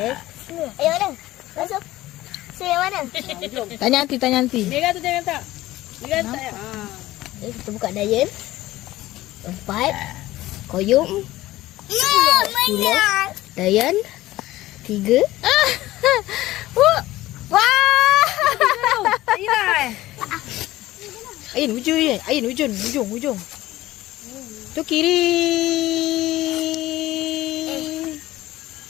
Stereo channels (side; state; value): right; quieter; 16.5 dB